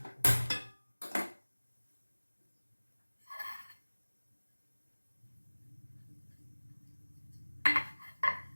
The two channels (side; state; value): both; inverted; correlation -1.00